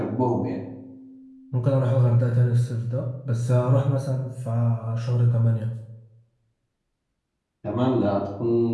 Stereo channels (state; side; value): identical; both; correlation 1.00